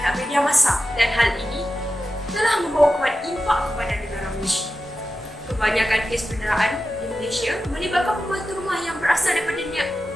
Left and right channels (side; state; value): both; normal; correlation 0.92